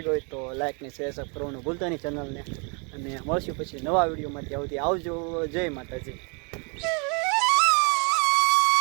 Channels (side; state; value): left; quieter; 35.2 dB